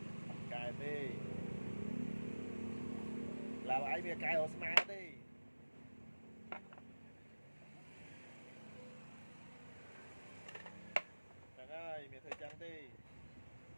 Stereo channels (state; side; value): inverted; both; correlation -1.00